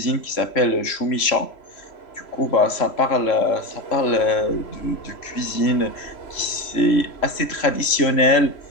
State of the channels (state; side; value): late; right; 3.0 ms